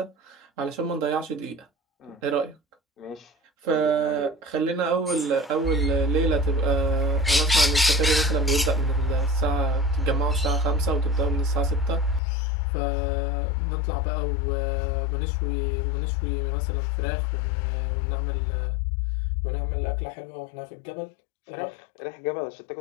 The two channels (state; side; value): drops out; right; at 12.2 s